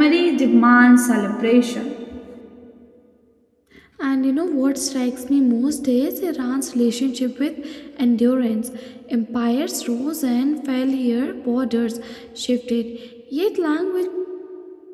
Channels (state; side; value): identical; both; correlation 1.00